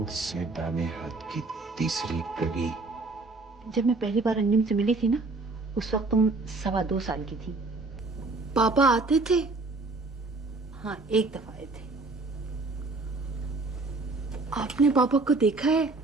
से दाने हाथ की तीसरी गली। जब मैं पहली बार अंजुम से मिली थी ना, उस वक्त तुम 2.25 साल की थी। पापा आते थे? हाँ, एक दफा आए थे। आपने पापा को देखा है?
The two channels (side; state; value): left; quieter; 3.5 dB